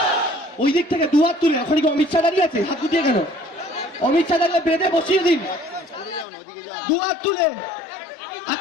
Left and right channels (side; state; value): right; drops out; at 6.2 s